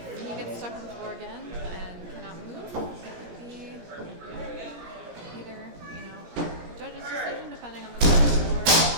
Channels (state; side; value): late; left; 17 ms